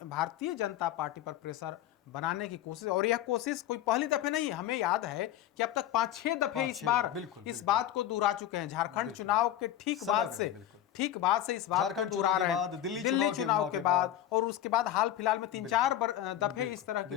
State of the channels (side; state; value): right; quieter; 12.1 dB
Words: जनता पार्टी पर प्रेशर बनाने की कोशिश, और यह कोशिश कोई पहली दफे नहीं है। हमें याद है कि अब तक 5-6 दफे इस बात को दोहरा चुके हैं। झारखंड चुनाव के ठीक बाद से इस बात झारखंड चुनाव के बाद, दिल्ली चुनाव के बाद, और उसके बाद हाल फिलहाल में 3-4 दफे इस तरह